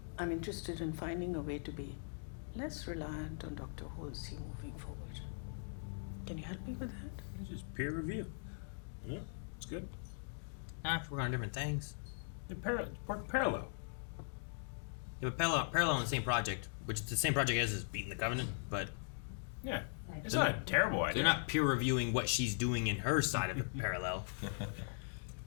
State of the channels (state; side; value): silent; right; digital silence